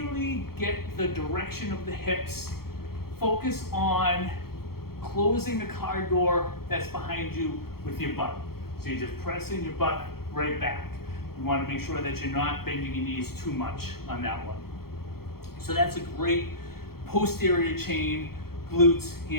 get the direction of the hips, focus on closing the car door that's behind you with your butt. So you're just pressing your butt right back. You want to make sure that you're not bending your knees too much on that one. So that's a great posterior chain, glutes,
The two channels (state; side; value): late; right; 0.94 ms